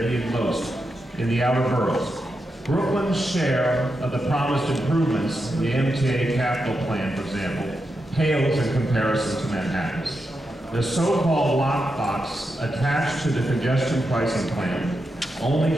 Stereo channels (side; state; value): both; normal; correlation 0.87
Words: needed most, in the outer boroughs. Brooklyn's share of the promised improvements in the MTA capital plan, for example, pales in comparison to Manhattan's. The so-called lockbox attached to the congestion pricing plan only